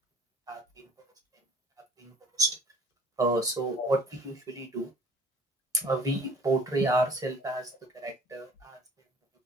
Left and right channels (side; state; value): both; normal; correlation 0.48